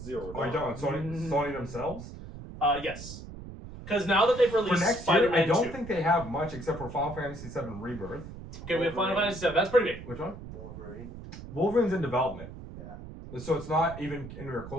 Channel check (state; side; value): noise; right; rumble, 12 dB below the sound